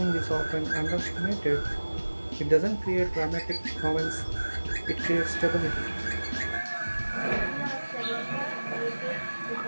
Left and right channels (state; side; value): inverted; both; correlation -1.00